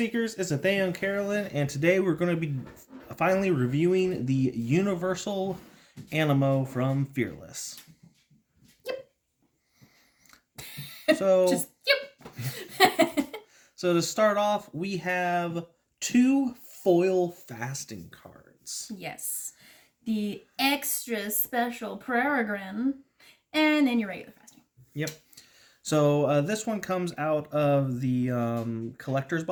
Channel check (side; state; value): both; identical; correlation 1.00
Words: it's Nathaniel and Carolyn, and today we're going to be finally reviewing the Universal Animo from Fearless. So, Just, yep. so to start off, we have two foil fasting cards. Yes. The extra special Peregrine, and then your regular fasting. Yep. So this one comes out of the collector's